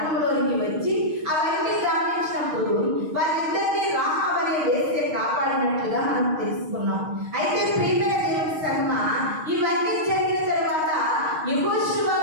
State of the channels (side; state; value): left; late; 6.4 ms